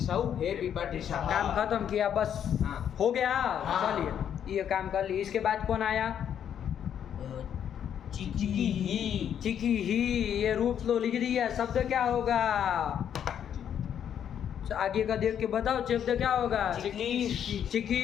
हे पिपठी सहा। काम खत्म किया बस, हाँ। हो गया। हाँ। चलिए ये काम कर लिए। इसके बाद कौन आया? चिकी ही, चिकी ही, ये रूप तो लिख दिया। शब्द क्या होगा? आगे का देख के बताओ, शब्द क्या होगा?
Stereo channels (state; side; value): quieter; right; 9.1 dB